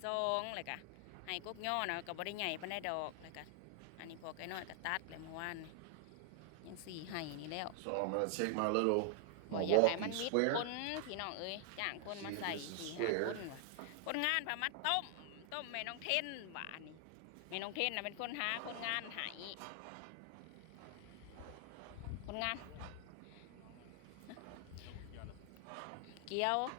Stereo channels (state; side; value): different; both; correlation 0.00